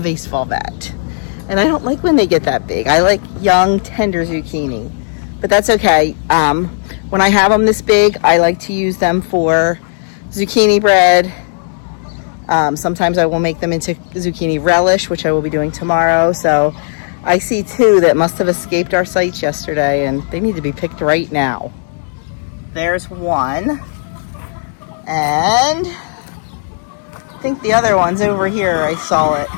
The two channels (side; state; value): right; silent; digital silence